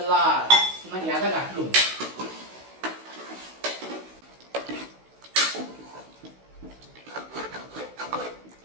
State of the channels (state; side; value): late; left; 16 ms